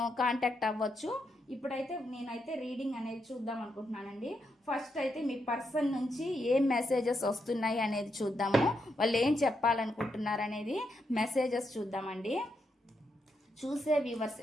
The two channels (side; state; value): both; normal; correlation 0.81